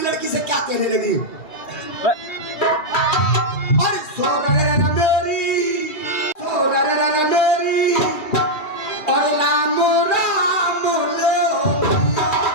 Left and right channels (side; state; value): right; late; 2.8 ms